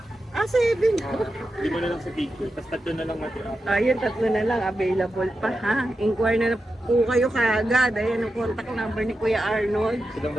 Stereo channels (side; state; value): both; normal; correlation 0.90